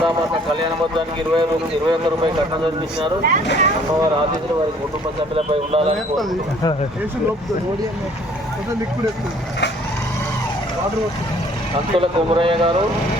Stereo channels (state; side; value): normal; both; correlation 0.57